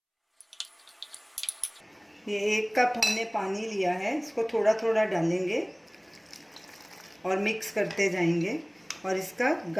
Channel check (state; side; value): identical; both; correlation 1.00